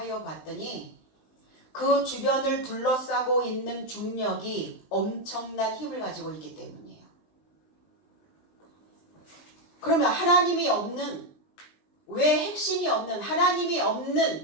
봤더니 그 주변을 둘러싸고 있는 중력이 엄청난 힘을 가지고 있기 때문이에요. 그러면 하나님이 없는, 왜 핵심이 없는, 하나님이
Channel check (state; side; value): late; right; 20 ms